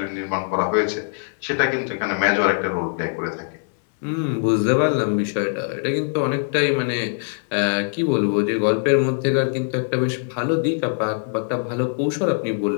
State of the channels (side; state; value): right; silent; 64 dB below the other